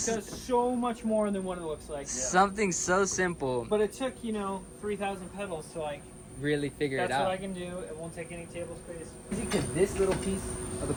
It does so much more than what it looks like. something so simple. But it took 3,000 pedals to Really figure that's it out. what I can do. It won't take any table space. Because this little piece of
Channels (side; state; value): both; identical; correlation 1.00